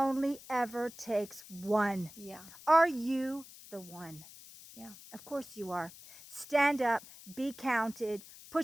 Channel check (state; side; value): noise; left; hiss, 18 dB below the sound